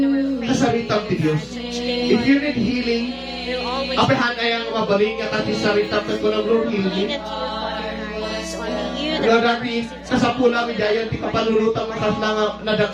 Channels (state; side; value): identical; both; correlation 1.00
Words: our faith. Kasalitan ti Dios. If you need healing, We'll always apehan ay ang mabaling nga tati sarita ka ko ng Lord lean healing. at you, Father God. It's only you Nga that dati, kasapula mi dayan ti kapalulutang makas na